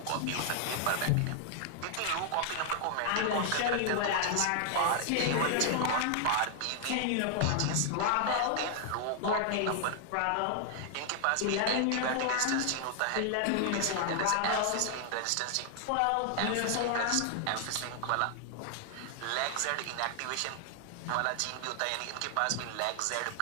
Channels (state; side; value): different; both; correlation 0.00